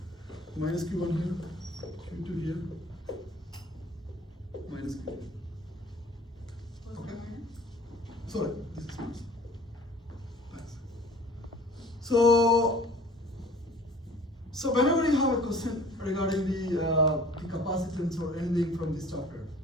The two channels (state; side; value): normal; both; correlation 0.49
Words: minus Q1 here, Q2 here, minus Q2. Okay? Sorry, this is minus. Thanks. So whenever you have a question regarding the capacitance or anything from this chapter,